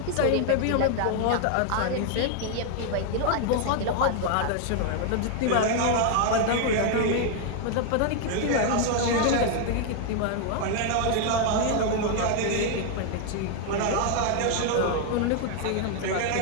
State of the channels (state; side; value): different; both; correlation 0.00